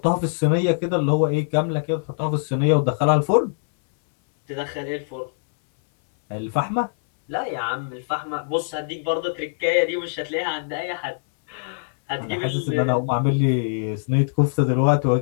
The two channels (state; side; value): silent; right; 64 dB below the other